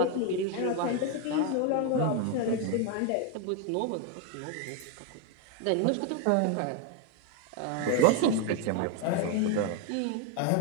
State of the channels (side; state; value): both; different; correlation 0.01